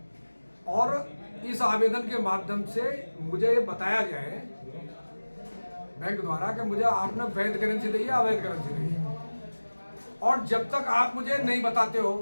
और इस आवेदन के माध्यम से मुझे ये बताया गया है बैंक द्वारा कि मुझे आपने वैध करेंसी दी है, अवैध करेंसी दी है। और जब तक आप मुझे नहीं बताते हो,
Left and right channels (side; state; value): both; inverted; correlation -1.00